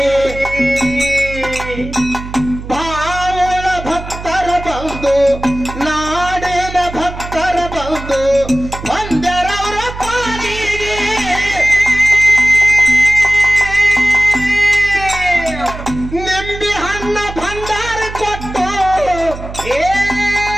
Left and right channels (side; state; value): right; noise; hum, 11 dB below the sound